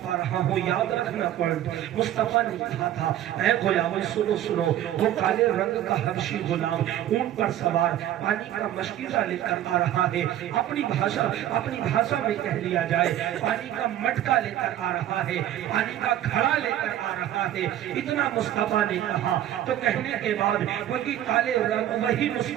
آ رہا ہوں، یاد رکھنا پوائنٹ۔ مصطفیٰ نے کہا تھا، اے غلاموں سنو، وہ کالے رنگ کا حبشی غلام اونٹ پر سوار پانی کا مشکیزہ لے کر آ رہا ہے، اپنی بھاشا میں کہہ لیا جائے پانی کا مٹکا لے کر آ رہا ہے، پانی کا گھڑا لے کر آ رہا ہے۔ اتنا مصطفیٰ نے کہا تو کہنے کے بعد وہی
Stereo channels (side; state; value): left; quieter; 12.0 dB